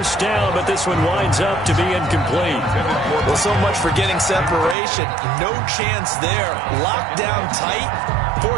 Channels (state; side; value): drops out; left; at 4.8 s